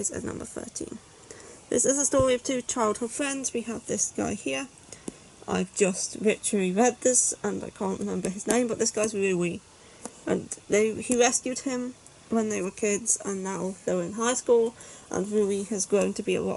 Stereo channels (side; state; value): both; identical; correlation 1.00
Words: at number 13. This is a story of two childhood friends. We have this guy here. I've just literally read this and I can't remember his name, but this guy's Rui. And he rescued him when they were kids, and now they're in high school, and Rui has grown to be a